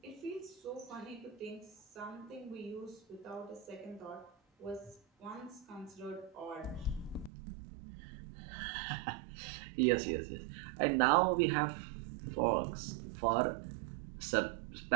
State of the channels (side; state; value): left; drops out; at 7.3 s